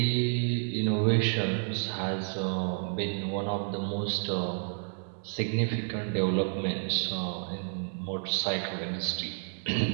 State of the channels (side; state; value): left; silent; 58 dB below the other